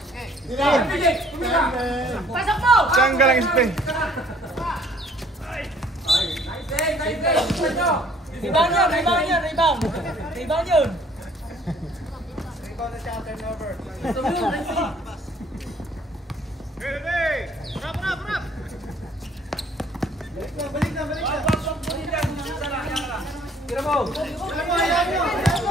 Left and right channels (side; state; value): both; normal; correlation 0.58